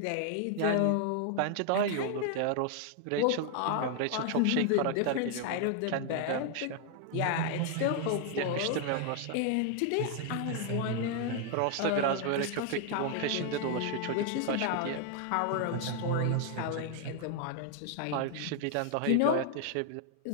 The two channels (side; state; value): both; different; correlation 0.00